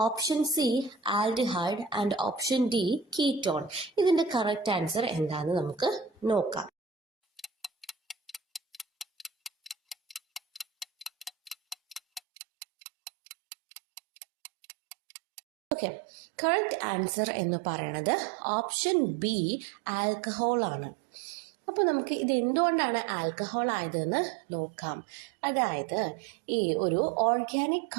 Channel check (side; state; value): left; drops out; at 12.2 s